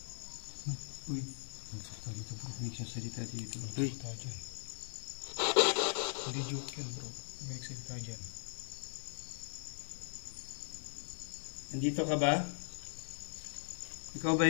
Uy, nagsalita dito bro. May nagsalita dito. Uy. Nagsalita dyan. Hindi joke yan bro. May nagsalita dyan. Nandito ka ba? Ikaw ba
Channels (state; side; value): silent; right; digital silence